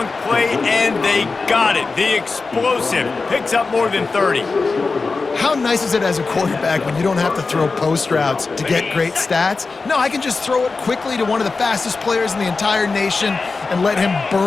play, and they got it. The explosive picks up more than 30. How nice is it as a quarterback when you don't have to throw post routes to get great stats? No, I can just throw it quickly to one of the fastest players in the entire nation and let him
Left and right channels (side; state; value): right; quieter; 4.1 dB